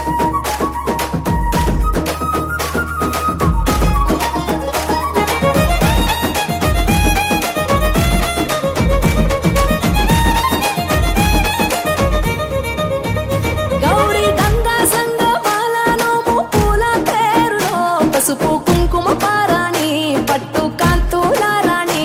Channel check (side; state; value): both; identical; correlation 1.00